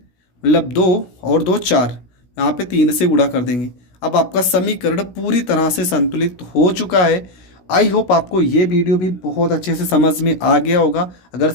मतलब दो और दो चार, यहाँ पे तीन से गुणा कर देंगे। अब आपका समीकरण पूरी तरह से संतुलित हो चुका है। आई होप आपको ये वीडियो भी बहुत अच्छे से समझ में आ गया होगा। अगर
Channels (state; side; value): late; right; 16 ms